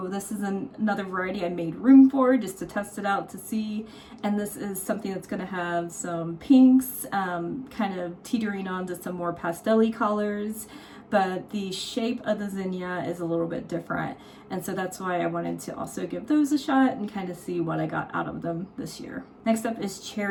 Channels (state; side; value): identical; both; correlation 1.00